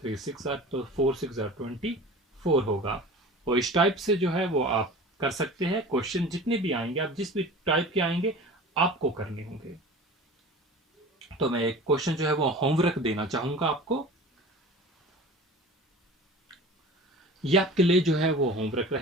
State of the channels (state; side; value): normal; both; correlation 0.38